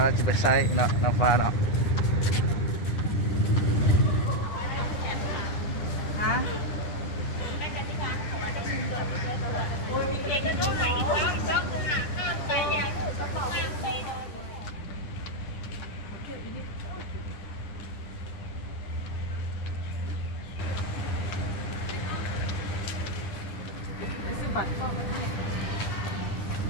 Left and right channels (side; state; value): right; late; 10 ms